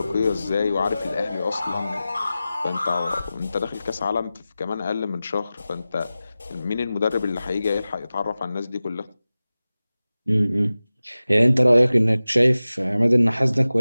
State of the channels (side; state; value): both; inverted; correlation -0.96